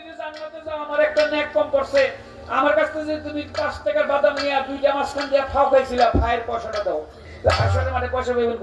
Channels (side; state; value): both; identical; correlation 1.00